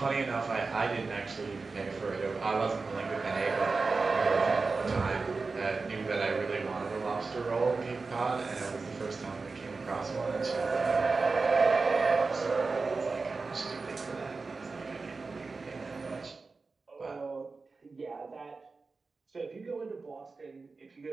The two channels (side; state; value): left; quieter; 4.1 dB